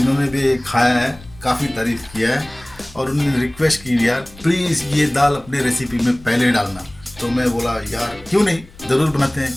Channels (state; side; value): noise; left; rumble, 21 dB below the sound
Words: भी खाया है, काफ़ी तारीफ़ किया है और उन्होंने रिक्वेस्ट की यार प्लीज़ ये दाल अपने रेसिपी में पहले डालना। तो मैं बोला यार क्यों नहीं, ज़रूर बनाते